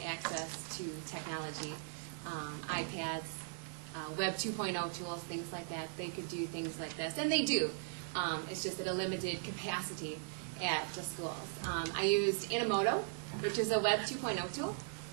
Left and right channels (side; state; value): left; silent; digital silence